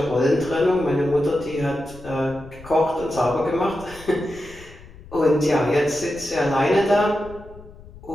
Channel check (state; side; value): noise; left; rumble, 19 dB below the sound